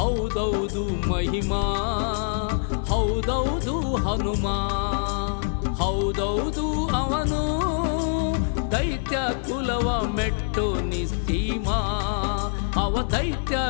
ಮಹಿಮಾ, ಹೌದೌದು ಹನುಮ, ಹೌದೌದು ಅವನು ದೈತ್ಯ ಕುಲವ ಮೆಟ್ಟೋ ನಿಸ್ಸೀಮ, ಅವ ದೈತ್ಯ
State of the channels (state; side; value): silent; right; 62 dB below the other